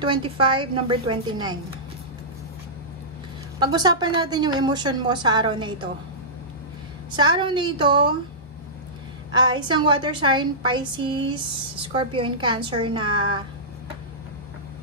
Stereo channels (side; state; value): both; normal; correlation -0.17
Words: number 29. Pag-usapan natin yung emotion mo sa araw na ito. Sa araw na ito, isang water sign, Pisces, Scorpio, and Cancer na